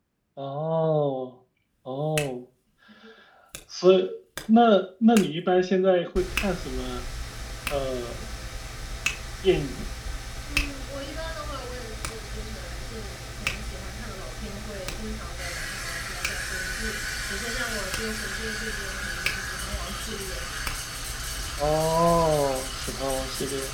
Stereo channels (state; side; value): identical; both; correlation 1.00